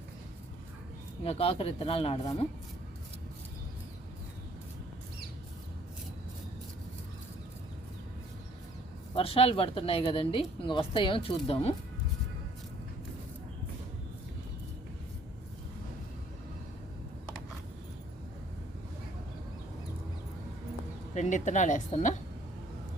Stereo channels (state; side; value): normal; both; correlation 0.60